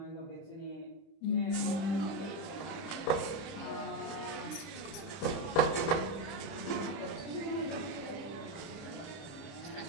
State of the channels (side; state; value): right; late; 30 ms